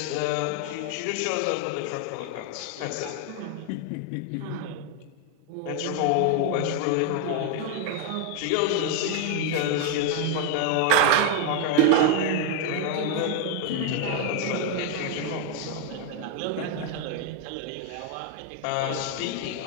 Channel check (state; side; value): different; both; correlation 0.01